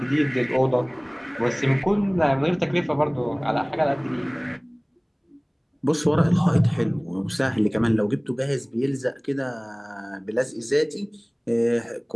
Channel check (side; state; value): both; identical; correlation 1.00